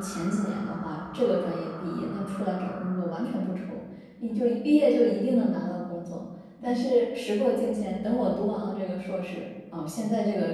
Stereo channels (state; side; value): identical; both; correlation 1.00